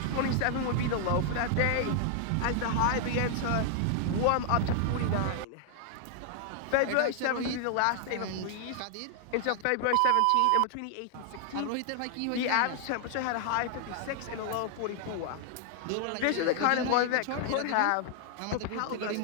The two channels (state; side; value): different; both; correlation 0.00